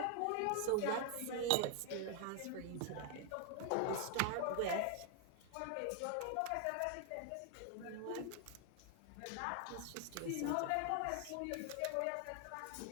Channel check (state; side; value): different; both; correlation 0.00